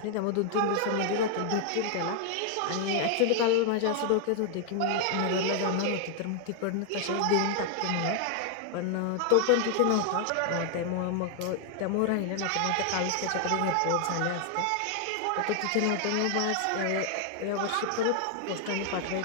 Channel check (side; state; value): both; different; correlation 0.00